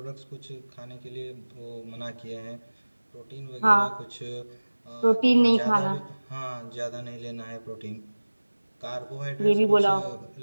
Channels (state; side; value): inverted; both; correlation -1.00